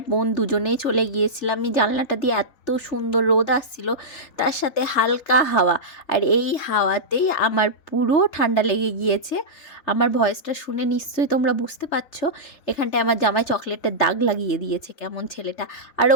বোন দুজনেই চলে গিয়েছিলাম। আমি জানলাটা দিয়ে এত সুন্দর রোদ আসছিল, তার সাথে হালকা হাওয়া, আর এই হাওয়াতেই আমার পুরো ঠান্ডা লেগে গিয়েছে। আমার ভয়েসটা শুনে নিশ্চয়ই তোমরা বুঝতে পারছো। এখানটায় আমার জামাই চকলেটের দাগ লাগিয়ে দিয়েছে কেমন ছেলেটা। আর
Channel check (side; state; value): right; late; 3.3 ms